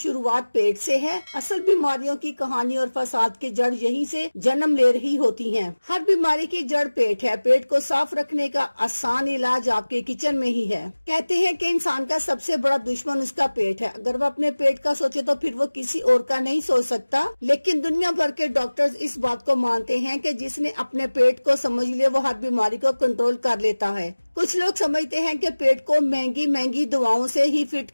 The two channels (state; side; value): inverted; both; correlation -1.00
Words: पेट से है। असल बीमारियों की कहानी और फसाद की जड़ यहीं से जन्म ले रही होती हैं। हर बीमारी की जड़ पेट है। पेट को साफ रखने का आसान इलाज आपके किचन में ही है। कहते हैं कि इंसान का सबसे बड़ा दुश्मन उसका पेट है। अगर वो अपने पेट का सोचे तो फिर वो किसी और का नहीं सोच सकता। लेकिन दुनिया भर के डॉक्टर्स इस बात को मानते हैं कि जिसने अपने पेट को समझ लिया वो हर बीमारी को कंट्रोल कर लेता है। कुछ लोग समझते हैं कि पेट को महंगी महंगी दवाओं से ही फिट